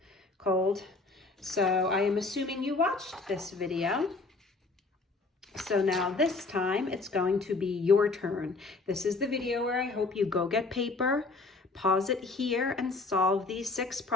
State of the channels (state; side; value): quieter; right; 3.6 dB